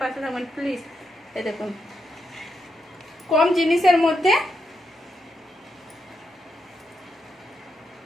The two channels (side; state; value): both; normal; correlation 0.82